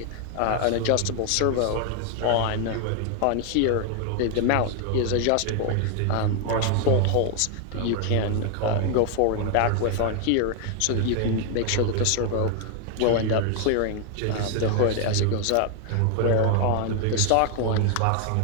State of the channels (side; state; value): both; different; correlation 0.00